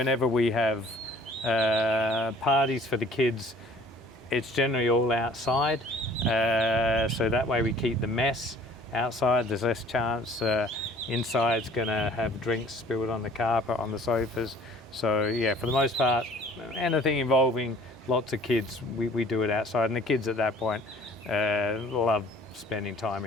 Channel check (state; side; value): normal; both; correlation 0.53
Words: we have parties for the kids, it's generally all outside. So that way we keep the mess outside. There's less chance inside's going to have drinks spilled on the carpet, on the sofas. So yeah, for the most part, anything involving lots of kids, we do it outside. And the kids at that point love spending time